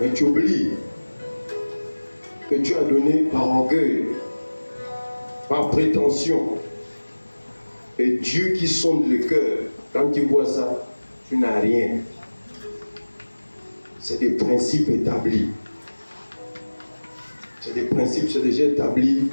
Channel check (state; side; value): inverted; both; correlation -1.00